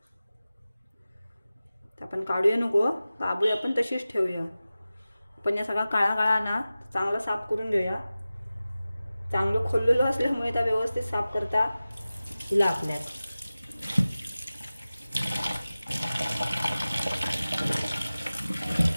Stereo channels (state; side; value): inverted; both; correlation -0.96